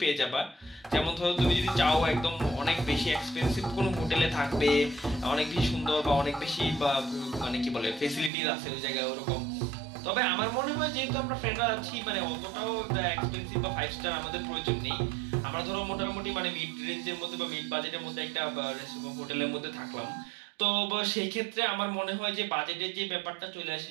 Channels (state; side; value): drops out; left; at 8.3 s